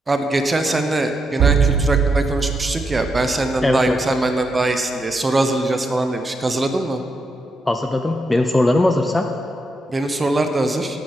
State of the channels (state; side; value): normal; both; correlation 0.82